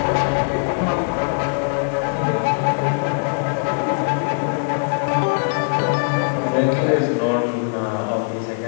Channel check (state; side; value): silent; right; 65 dB below the other